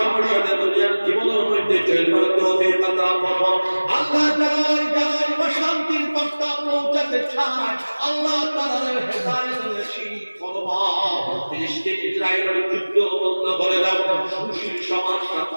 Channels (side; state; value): both; inverted; correlation -1.00